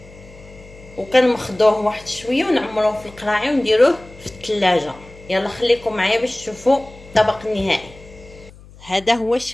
وكنمخضوه واحد شويه ونعمروه في القراعي ونديروه في الثلاجه. يلا خليكم معايا باش تشوفوا الطبق النهائي. هذا هو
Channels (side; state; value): left; noise; hum, 21 dB below the sound